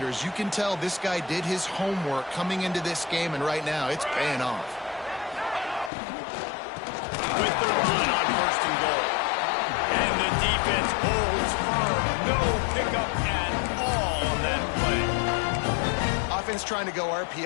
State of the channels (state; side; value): drops out; right; at 5.9 s